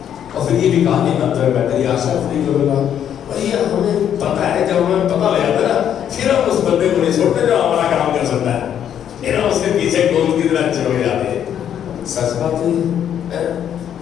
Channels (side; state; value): right; quieter; 9.5 dB